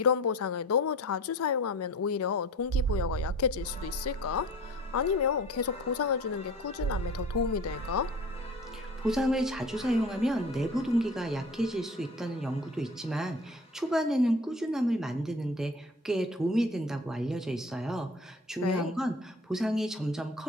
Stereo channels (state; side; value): normal; both; correlation 0.41